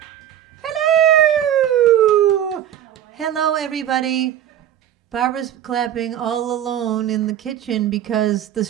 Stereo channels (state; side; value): quieter; left; 10.9 dB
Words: Hello, everybody. Barbara's clapping all alone in the kitchen because the